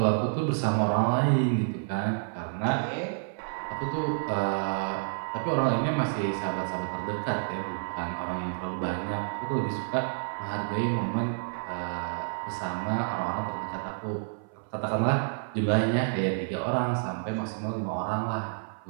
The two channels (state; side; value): silent; left; 58 dB below the other